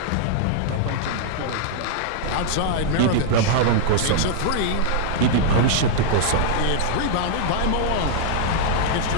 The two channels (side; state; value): both; different; correlation -0.01